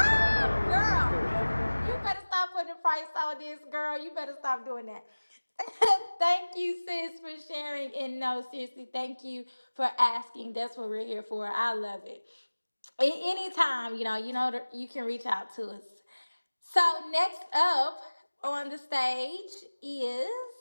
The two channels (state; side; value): inverted; both; correlation -1.00